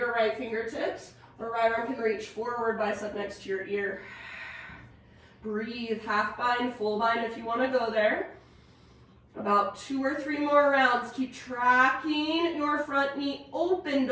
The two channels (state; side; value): identical; both; correlation 1.00